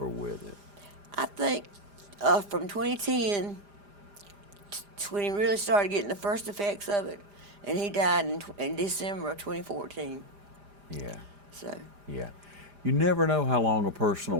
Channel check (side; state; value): left; late; 5.0 ms